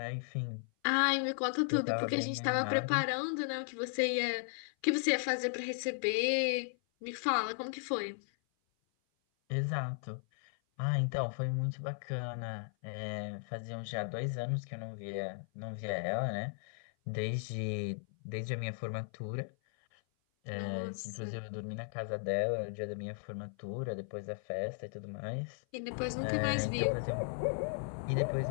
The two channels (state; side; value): silent; right; 54 dB below the other